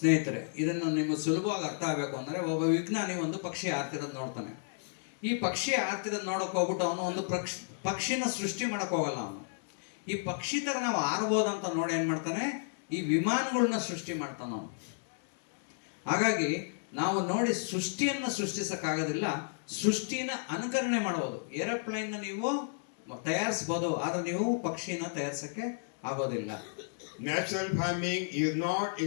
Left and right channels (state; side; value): silent; right; digital silence